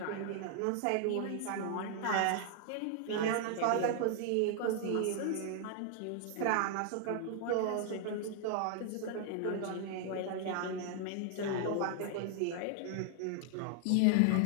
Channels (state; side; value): different; both; correlation 0.00